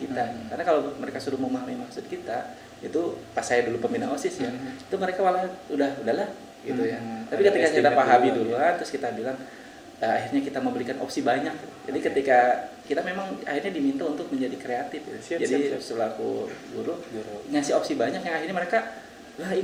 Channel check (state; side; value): identical; both; correlation 1.00